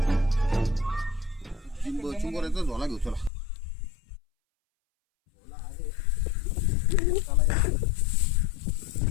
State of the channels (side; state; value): right; drops out; at 3.3 s